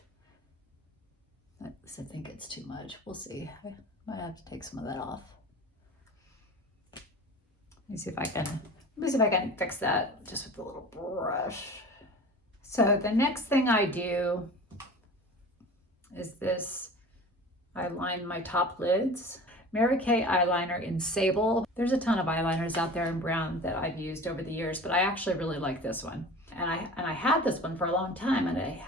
I think it's too much. We'll see. I might have to take some of that off. Let me see if I can fix that just with a little brush. So the next thing I do is this. I line my top lids. Mary Kay eyeliner in Sable. There's a ton of eyeliners out there in brown that I've used over the years, but I actually really like this one. And I had this one for a long time and I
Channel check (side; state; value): both; normal; correlation 0.38